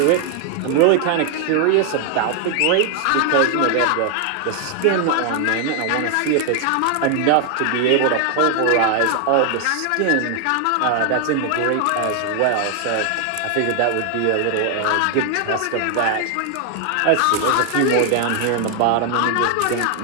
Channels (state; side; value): different; both; correlation 0.00